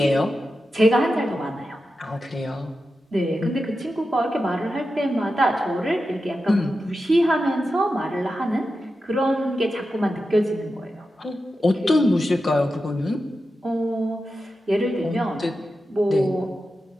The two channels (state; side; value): normal; both; correlation 0.91